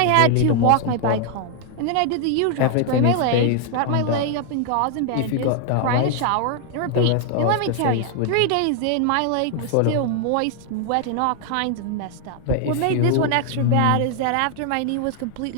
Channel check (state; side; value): different; both; correlation 0.00